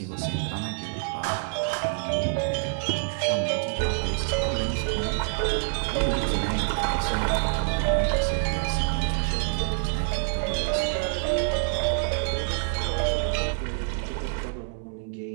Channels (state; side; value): silent; left; 59 dB below the other